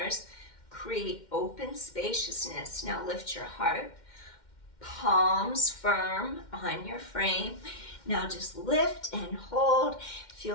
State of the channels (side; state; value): right; late; 2.1 ms